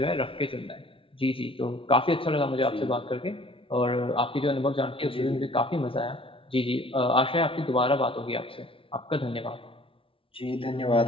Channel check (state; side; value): late; right; 0.26 ms